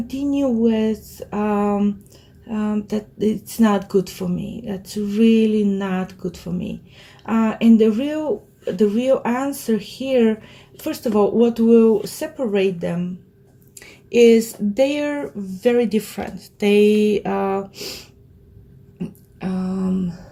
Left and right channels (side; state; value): both; identical; correlation 1.00